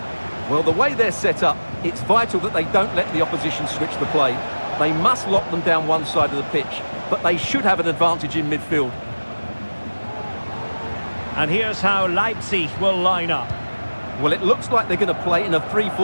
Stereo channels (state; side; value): inverted; both; correlation -1.00